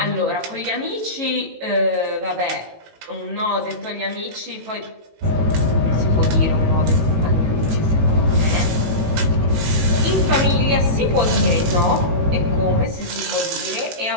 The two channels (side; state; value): left; late; 18 ms